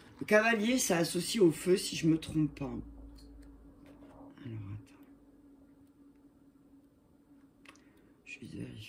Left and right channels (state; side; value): identical; both; correlation 1.00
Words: Le cavalier, ça associe au feu, si je me trompe pas. Alors, attends. Je vais